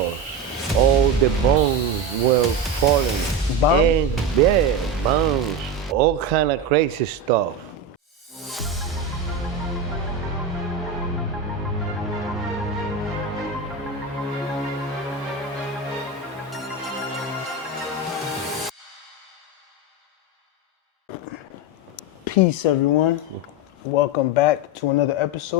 all the bombs were falling. Bombs? And yeah, bombs, all kind of crazy stuff. Peace, everyone. Welcome back to another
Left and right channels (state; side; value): normal; both; correlation 0.18